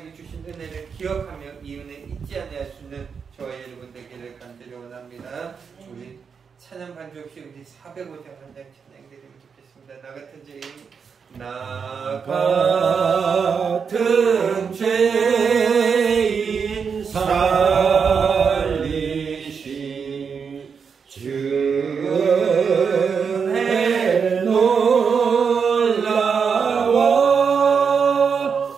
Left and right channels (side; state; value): left; quieter; 6.1 dB